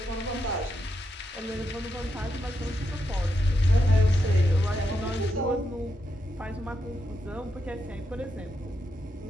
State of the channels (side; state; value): both; normal; correlation 0.83